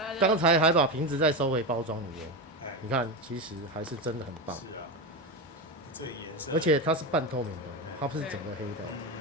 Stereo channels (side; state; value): both; normal; correlation 0.17